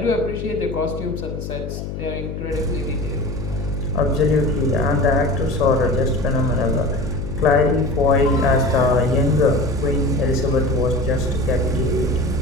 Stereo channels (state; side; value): noise; left; hum, 7 dB below the sound